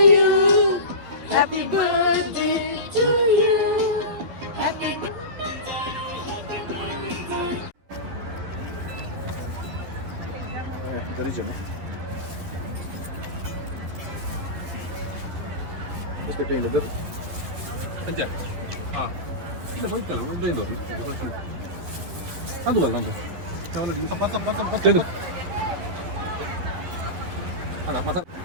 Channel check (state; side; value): late; left; 11 ms